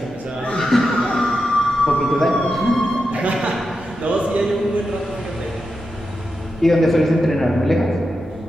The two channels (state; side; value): normal; both; correlation 0.88